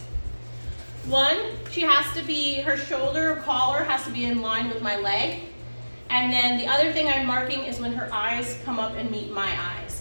One, her shoulder or collar has to be in line with my leg. And then the other thing I'm marking is when her eyes come up and meet my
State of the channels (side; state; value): both; inverted; correlation -1.00